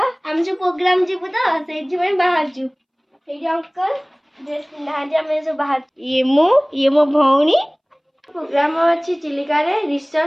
हम जो प्रोग्राम जीवु तो सेठी में बाहर जु सेठी अंकल ड्रेस पिंधा हम जो बाहर ये मो भौणी। प्रोग्राम अच्छी चिलिका रे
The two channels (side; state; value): both; identical; correlation 1.00